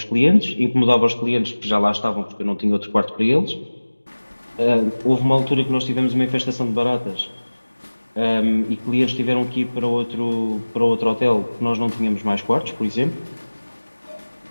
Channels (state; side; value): inverted; both; correlation -1.00